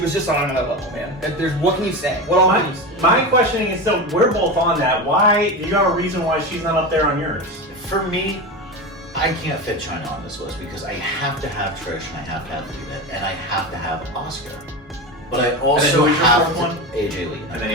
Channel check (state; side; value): normal; both; correlation 0.22